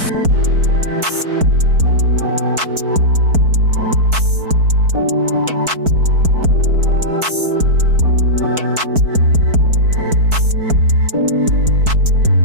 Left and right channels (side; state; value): left; late; 4.6 ms